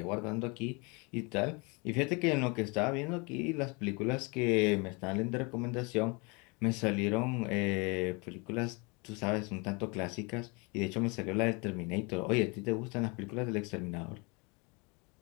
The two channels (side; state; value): right; quieter; 29.9 dB